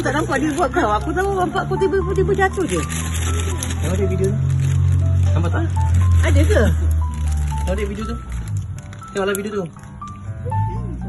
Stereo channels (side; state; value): both; identical; correlation 1.00